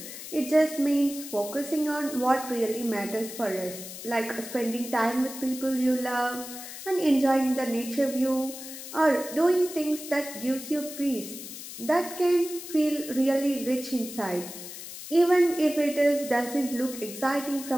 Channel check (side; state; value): left; noise; hiss, 11 dB below the sound